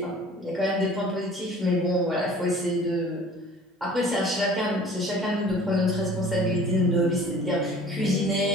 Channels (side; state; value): both; normal; correlation 0.47